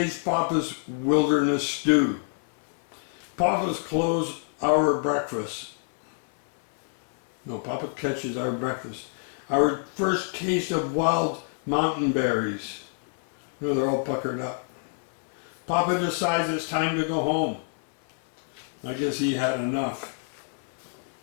Papa's wilderness stew. Papa's clothes our breakfast. No, Papa catches our breakfast. Our first taste of wild mountain berries. No, they're all puckered up. Papa decides it's time to go home. I guess he had enough.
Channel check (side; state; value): right; silent; 60 dB below the other